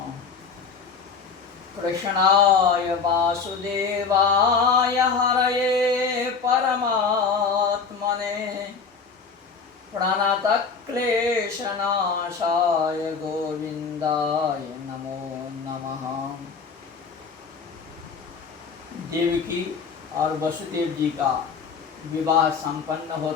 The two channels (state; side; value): quieter; right; 5.4 dB